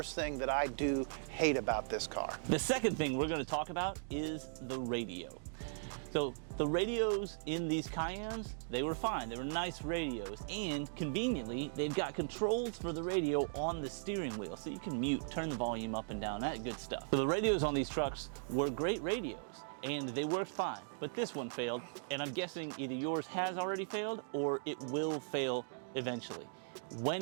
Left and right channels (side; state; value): left; silent; digital silence